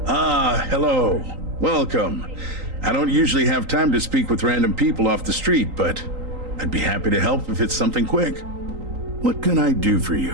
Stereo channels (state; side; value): late; left; 3.8 ms